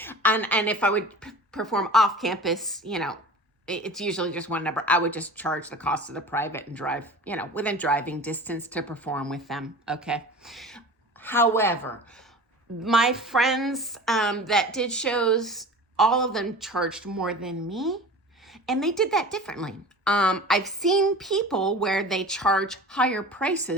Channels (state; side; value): normal; both; correlation 0.37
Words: And if I would perform off campus, it's usually just one number. I would just charge the cost of the private and drive, within driving distance to perform with them. Okay. However, my friends that did shows all of them charged more than me, and they did that differently. I've seen people where they charge higher